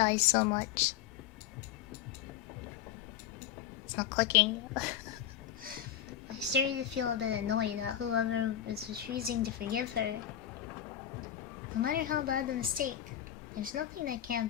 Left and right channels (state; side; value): quieter; right; 10.8 dB